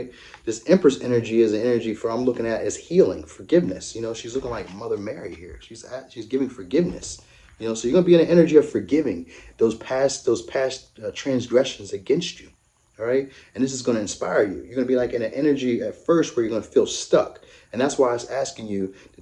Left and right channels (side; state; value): both; identical; correlation 1.00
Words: This Empress energy is an energy for, I'm looking at as healing, forgiveness. She's looking like Mother Mary here. She's giving forgiveness. So you're gonna be in an energy of forgiving those past transgressions against you. All right, and this is going to inspire you. You're going to be like in an energy at first where you're going to feel stuck, and that's why it's asking you